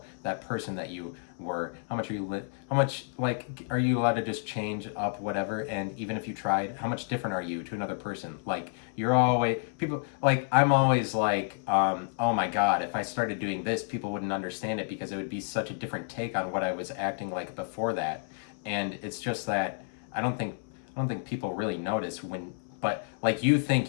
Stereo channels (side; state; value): right; silent; 57 dB below the other